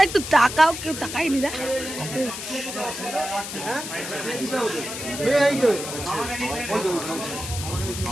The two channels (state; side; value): noise; left; hiss, 7 dB below the sound